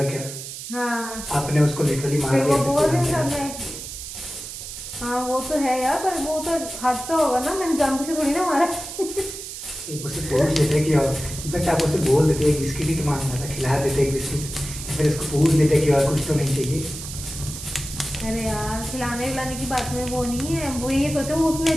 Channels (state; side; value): noise; right; hiss, 10 dB below the sound